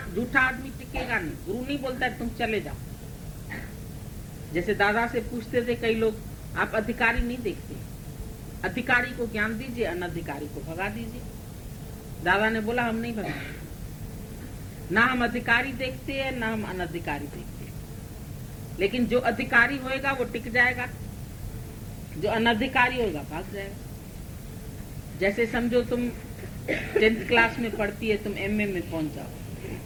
झूठा आदमी टिकेगा नहीं। गुरु नहीं बोलता है तुम चले जाओ। जैसे दादा से पूछते थे कई लोग, आप अधिकारी नहीं देखते, अधिकारी को ज्ञान दीजिए, अनधिकारी को भगा दीजिए। दादा ने बोला हम नहीं भगाएंगे, ना हम अधिकारी देखते हैं ना हम अनधिकारी देखते हैं। लेकिन जो अधिकारी होएगा वो टिक जाएगा, जो अनधिकारी होगा भाग जाएगा। जैसे समझो तुम 10th क्लास में पढ़ती है, तुम एमए में पहुंच जाओ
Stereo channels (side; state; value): both; identical; correlation 1.00